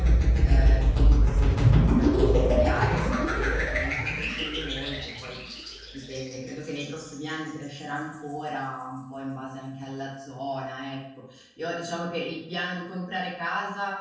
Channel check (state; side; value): identical; both; correlation 1.00